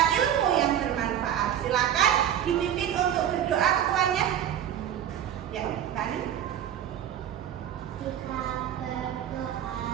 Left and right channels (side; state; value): left; quieter; 10.2 dB